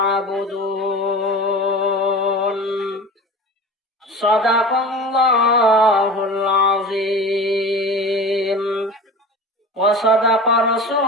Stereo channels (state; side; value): normal; both; correlation 0.34